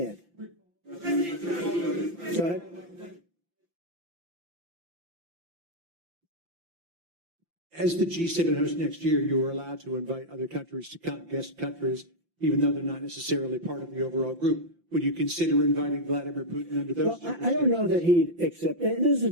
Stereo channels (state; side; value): late; left; 5.8 ms